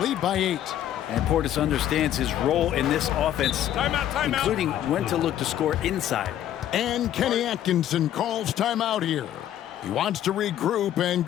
by 8. And Portis understands his role in this offense, including when to look to score inside. And Kenny Atkinson calls timeout here. He wants to regroup and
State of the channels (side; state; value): right; quieter; 11.4 dB